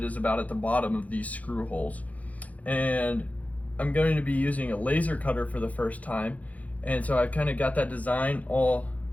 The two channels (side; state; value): right; late; 0.071 ms